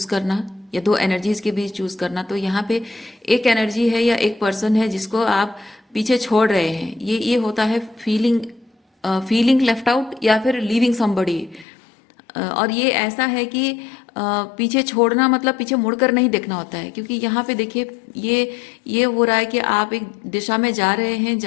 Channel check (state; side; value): drops out; right; at 11.7 s